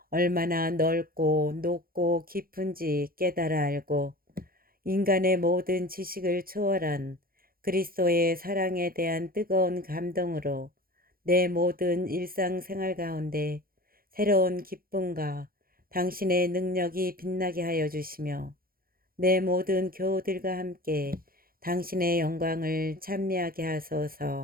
얼마나 넓고 높고 깊은지 깨달아 알고 인간의 모든 지식을 초월한 그리스도의 사랑에 대한 뜨거운 감동으로 내 모든 일상생활 가운데 새로운 기쁨과 당신의 능력이 빛나게 하여 주시며 내 모든 교우들과 함께 당신의 영광을 찬미하게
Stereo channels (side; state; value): left; late; 0.42 ms